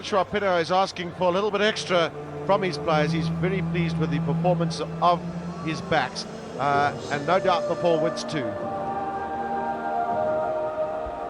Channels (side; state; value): both; identical; correlation 1.00